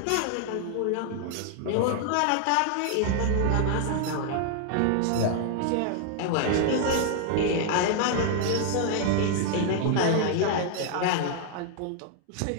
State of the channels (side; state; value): both; different; correlation 0.00